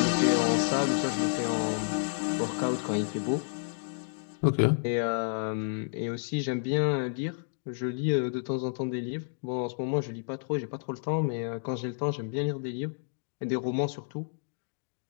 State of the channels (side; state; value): right; silent; digital silence